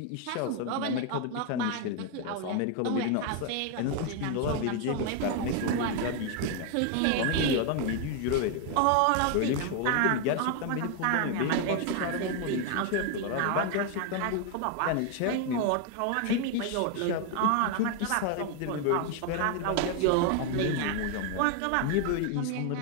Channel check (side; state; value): both; different; correlation 0.01